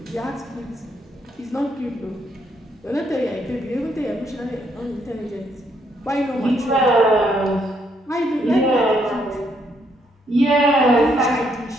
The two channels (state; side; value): normal; both; correlation 0.73